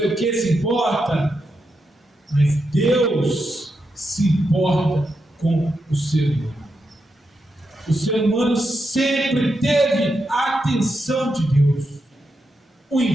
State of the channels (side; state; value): both; normal; correlation 0.85